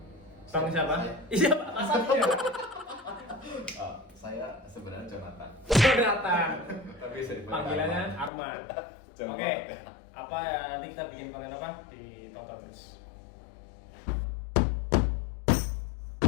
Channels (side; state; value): right; drops out; at 8.3 s